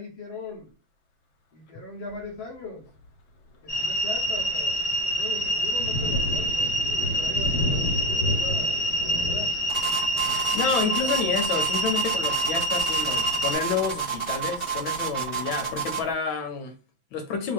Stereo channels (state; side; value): late; right; 6.0 ms